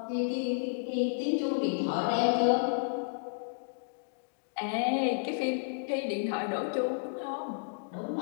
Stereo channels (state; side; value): silent; right; digital silence